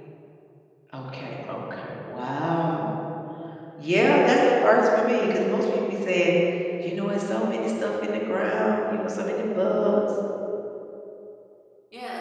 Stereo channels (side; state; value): both; identical; correlation 1.00